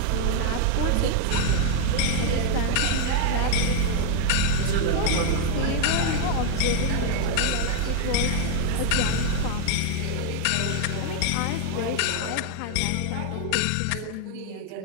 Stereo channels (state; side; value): different; both; correlation 0.00